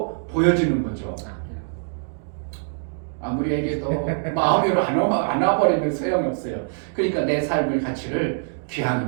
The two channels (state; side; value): silent; left; digital silence